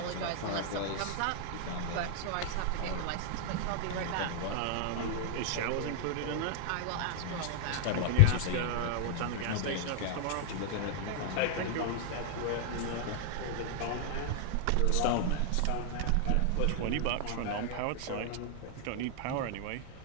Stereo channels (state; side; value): different; both; correlation 0.00